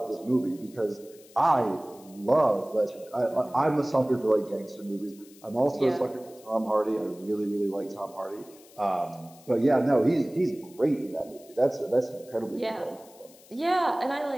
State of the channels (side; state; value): left; noise; hiss, 24 dB below the sound